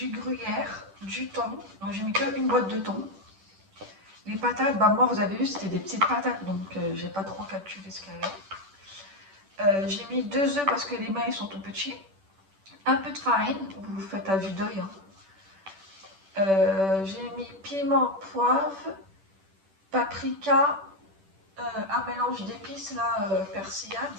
gruyère, du thon. Donc j'ai mis qu'une boîte de thon. Les patates, bah moi vous avez vu c'était des petites patates donc j'ai pas trop calculé ce qu'il y avait. J'ai mis 2 œufs parce que les mains ils sont tout petits. Un peu de farine, vous faites à vue d'œil. Hein. J'ai mis piment, poivre, paprika, un mélange d'épices là, persillade,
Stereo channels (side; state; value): left; late; 10 ms